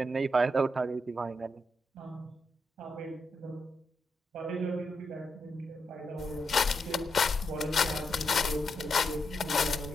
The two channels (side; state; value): both; normal; correlation 0.83